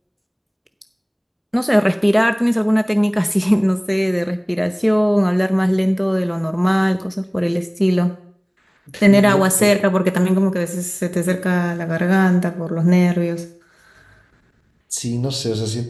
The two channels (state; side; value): identical; both; correlation 1.00